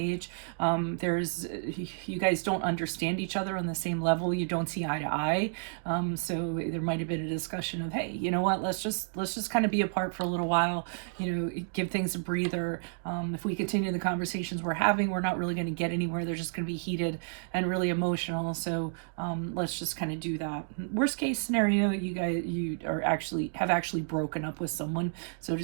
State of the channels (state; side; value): silent; left; digital silence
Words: You guys don't understand each other on the same level. You don't see eye to eye. So there might have been a discussion of, hey, you know what? Let's just kind of be apart for a little while. Give things a breather. If we continue the conversations we're having, we're not really going to get anywhere. They're just going to be heated and really emotional. So let's just kind of do that. Worst case scenario, you have actually broken up with someone, so to